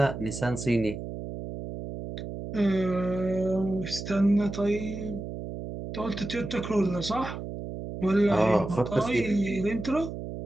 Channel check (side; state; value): right; noise; hum, 8 dB below the sound